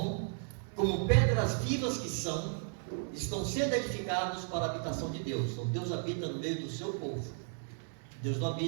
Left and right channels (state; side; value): silent; left; 55 dB below the other